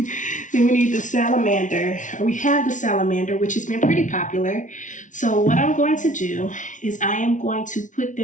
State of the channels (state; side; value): late; right; 0.37 ms